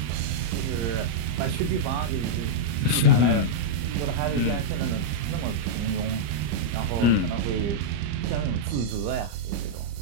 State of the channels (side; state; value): left; late; 34 ms